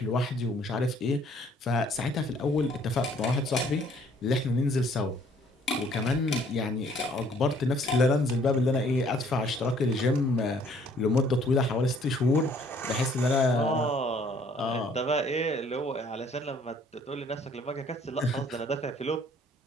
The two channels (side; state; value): both; normal; correlation 0.60